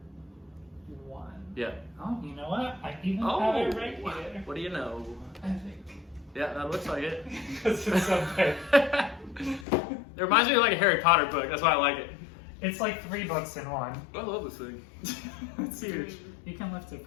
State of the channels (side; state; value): right; drops out; at 9.7 s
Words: 1. Yeah. Oh, you know what? I even Oh, have it right here. what do you know? I think. Yeah, that looks like it. Because it's so big. It reminds me of like a Harry Potter book. That's why I like it. It's like 3 books in 1. I love this thing. It's huge. You can lift it